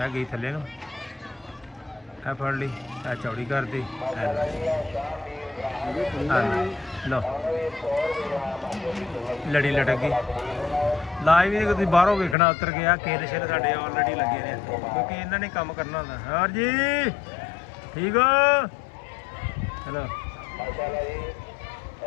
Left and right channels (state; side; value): drops out; right; at 12.4 s